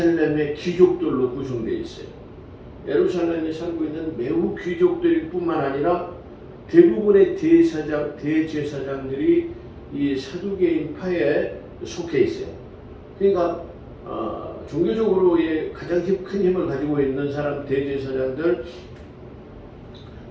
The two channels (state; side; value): identical; both; correlation 1.00